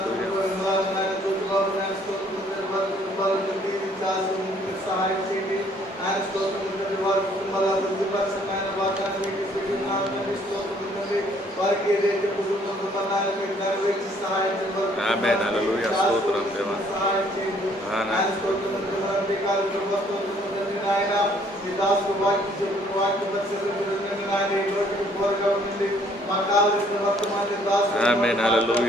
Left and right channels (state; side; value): normal; both; correlation 0.62